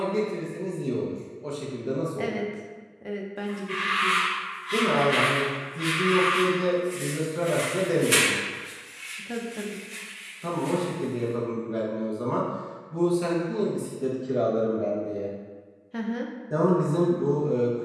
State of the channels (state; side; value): identical; both; correlation 1.00